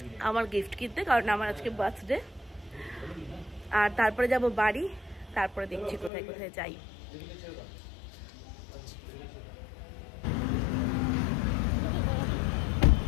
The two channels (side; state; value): right; drops out; at 6.1 s